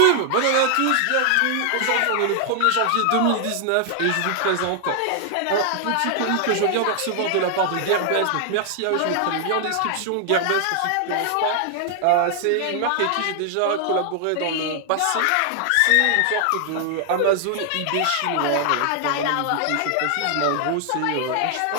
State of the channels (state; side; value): different; both; correlation 0.00